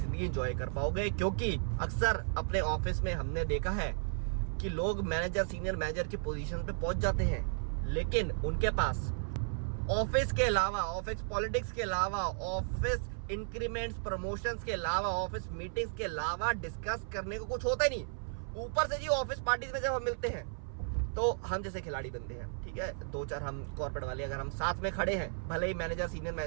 एंजॉय कर पाओगे। क्योंकि अक्सर अपने ऑफिस में हमने देखा है कि लोग मैनेजर, सीनियर मैनेजर की पोजीशन पे पहुंच जाते हैं, लेकिन उनके पास ऑफिस के अलावा, ऑफिस पॉलिटिक्स के अलावा, ऑफिस इंक्रीमेंट्स, प्रमोशंस के अलावा, ऑफिस मीटिंग्स के अलावा डिस्कस करने को कुछ होता ही नहीं। ऊपर से जी ऑफिस पार्टीज में जब हम मिलते हैं तो हम जैसे खिलाड़ी बनते हैं, ठीक है। 2-4 हम कॉर्पोरेट वाले अगर हम साथ में खड़े हैं, भले ही मैनेजर, सीनियर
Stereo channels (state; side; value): silent; left; 55 dB below the other